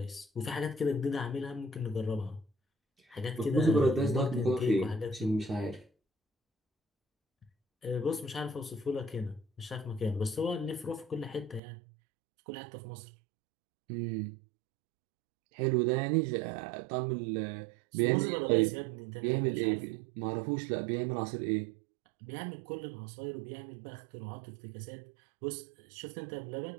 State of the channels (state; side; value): drops out; left; at 11.6 s